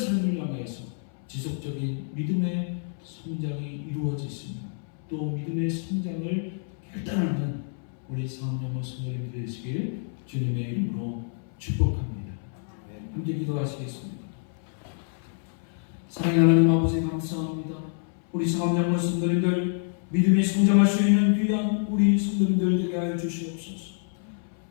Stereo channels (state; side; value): silent; right; 60 dB below the other